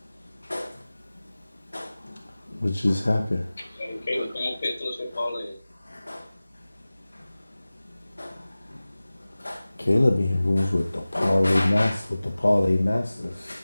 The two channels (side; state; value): both; inverted; correlation -0.98